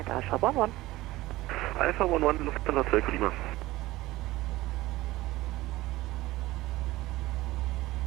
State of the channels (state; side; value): quieter; left; 17.9 dB